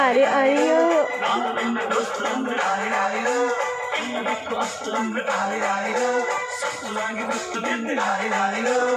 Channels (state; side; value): identical; both; correlation 1.00